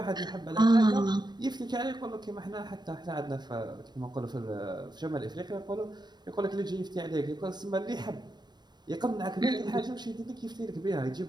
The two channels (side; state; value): left; late; 0.21 ms